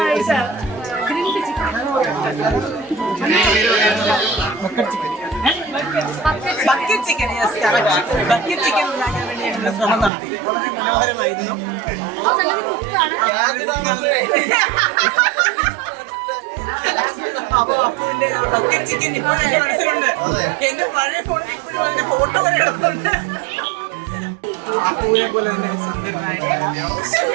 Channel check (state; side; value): drops out; left; at 10.1 s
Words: ബക്കറ്റ് ചിക്കൻ ഉണ്ടാക്കാൻ വേണ്ടി ഞങ്ങൾ ശ്രമം നടത്തി. വളരെ മനോഹരമായിരുന്നു. അപ്പൊ അപ്പുവിന്റെ ബക്കറ്റ് ചിക്കൻ ഇപ്പോഴും എന്റെ മനസ്സിലുണ്ട്. എന്റെ പഴയ ഫോണിൽ ഇപ്പോഴും അതിന്റെ ഫോട്ടോ വരെ എടുക്കുന്നുണ്ട്. അപ്പുവിനെ പോലെ തന്നെ